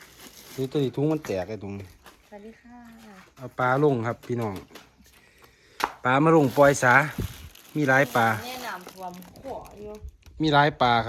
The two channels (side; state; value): both; identical; correlation 1.00